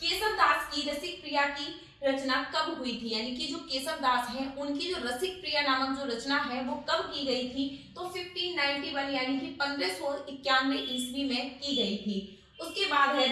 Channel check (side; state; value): both; identical; correlation 1.00